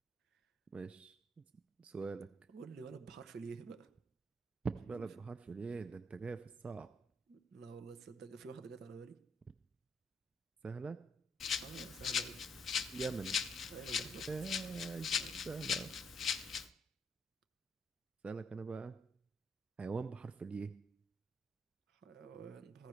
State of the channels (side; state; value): both; normal; correlation 0.72